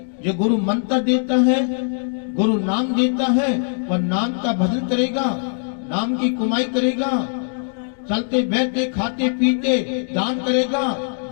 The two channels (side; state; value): right; silent; 65 dB below the other